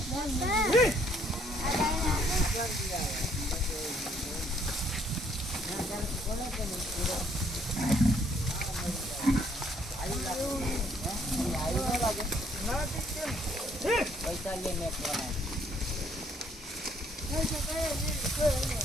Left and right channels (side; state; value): both; normal; correlation 0.66